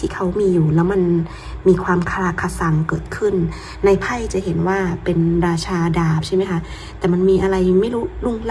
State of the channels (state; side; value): identical; both; correlation 1.00